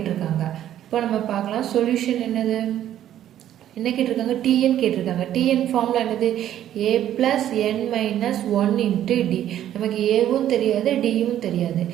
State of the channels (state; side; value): quieter; left; 11.5 dB